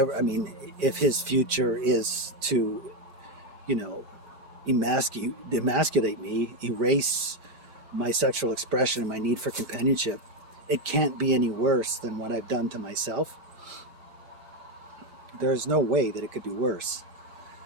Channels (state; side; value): late; left; 9.0 ms